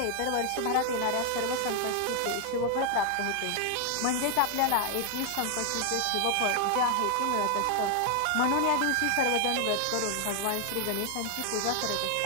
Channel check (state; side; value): different; both; correlation 0.00